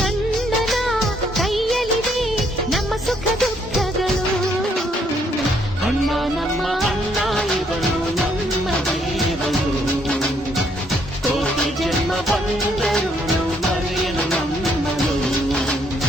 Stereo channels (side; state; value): both; normal; correlation 0.70